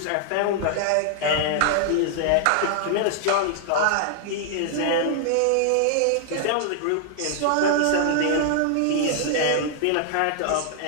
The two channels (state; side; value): different; both; correlation 0.00